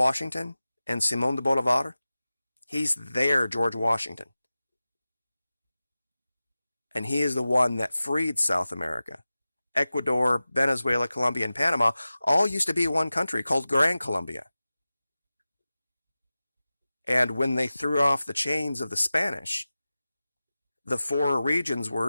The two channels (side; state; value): both; inverted; correlation -0.96